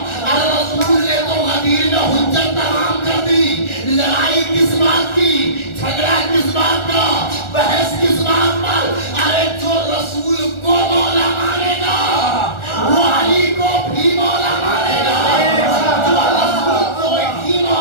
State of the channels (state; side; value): late; right; 1.4 ms